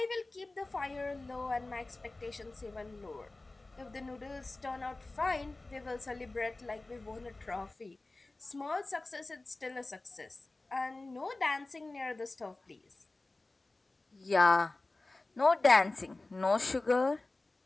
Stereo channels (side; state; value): right; quieter; 3.1 dB